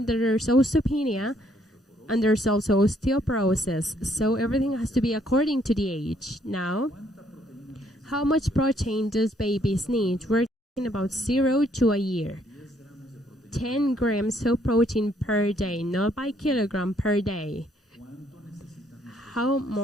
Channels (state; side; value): normal; both; correlation 0.68